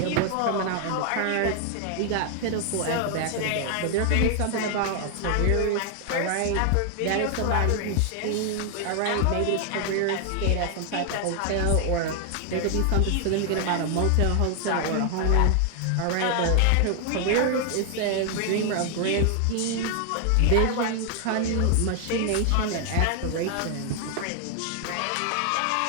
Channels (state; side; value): different; both; correlation 0.00